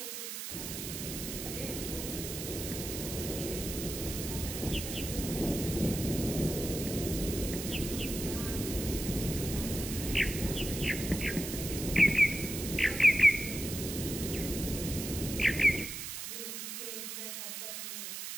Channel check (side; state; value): right; noise; hiss, 6 dB below the sound